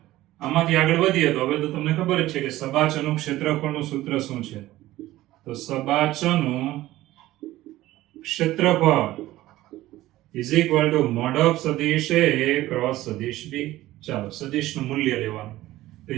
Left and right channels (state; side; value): quieter; left; 16.1 dB